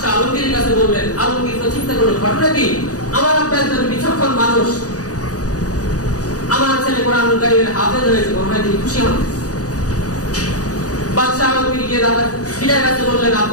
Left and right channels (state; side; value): late; right; 0.67 ms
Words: আলমগীরের কাছে বললেন। আলমগীর তো চিন্তা করলেন, ঘটনা কি, আমার আব্বা একজন বিচক্ষণ মানুষ, আমার ছেলে কুরআনুল কারীমের হাফেজ হয়েছে, মনে হয় তিনি খুশি হন। বাদশাহ আলমগীর গিয়ে দাদা পিতার কাছে বললেন,